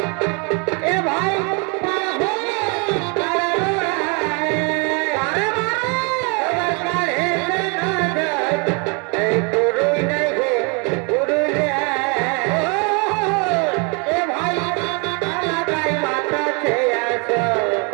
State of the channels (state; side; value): quieter; left; 33.4 dB